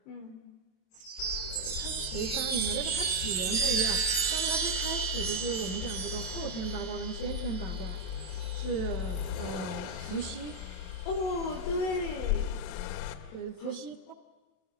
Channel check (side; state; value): right; late; 27 ms